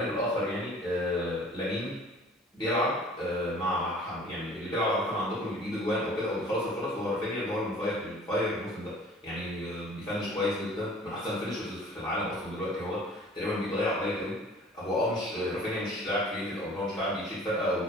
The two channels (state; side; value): normal; both; correlation 0.49